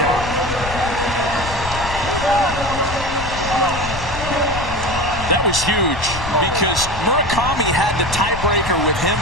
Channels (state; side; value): noise; left; rumble, 9 dB below the sound